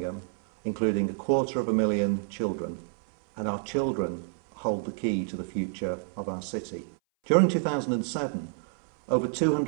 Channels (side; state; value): left; silent; 59 dB below the other